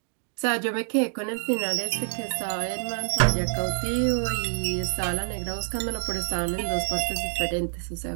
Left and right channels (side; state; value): left; silent; digital silence